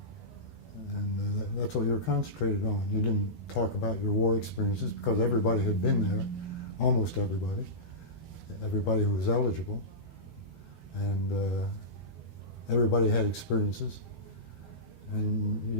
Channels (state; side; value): late; right; 12 ms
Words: And that's what you were concentrated on. You didn't talk about your war experiences because everybody had been there, almost everybody who was eligible, and everybody had experiences. And you